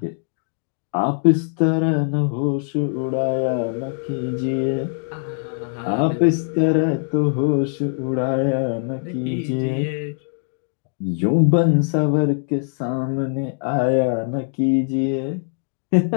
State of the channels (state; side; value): silent; right; digital silence